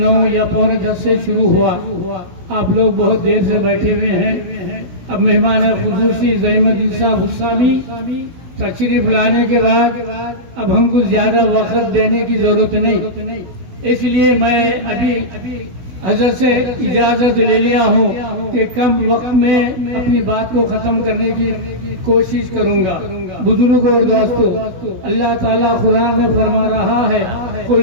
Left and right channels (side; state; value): left; late; 16 ms